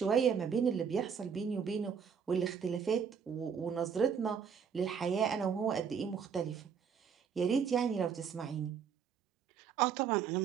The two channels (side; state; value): left; quieter; 7.0 dB